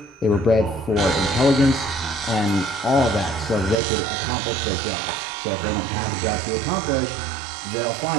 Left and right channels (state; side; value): drops out; left; at 3.8 s